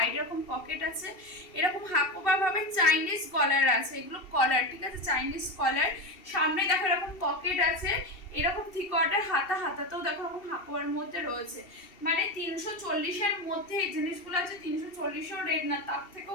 এরকম পকেট আছে, এরকম হাকোবা ভাবে চাইনিজ কলার আছে, এগুলো কলার, ঠিক আছে? চাইনিজ কলার, সামনে দেখো এরকম পকেট আছে, এরকম 3/4 হাতাতেও দেখো এরকম হাকোবার মধ্যে রয়েছে, মানে 340-এর মধ্যে এই জিনিসগুলো আছে। 340-ও রেট না, তার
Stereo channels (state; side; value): late; right; 2.7 ms